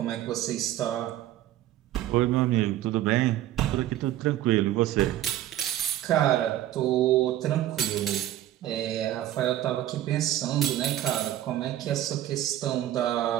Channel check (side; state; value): left; quieter; 13.2 dB